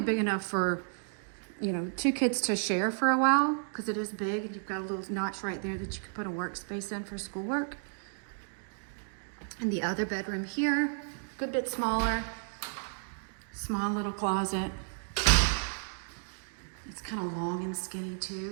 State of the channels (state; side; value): silent; left; digital silence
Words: enough for 2 kids to share for a while, because it is big, and you've got a little notch right there that you can put a workspace in for schoolwork. And the other bedroom here, good bit smaller, small little closet. It's kind of long and skinny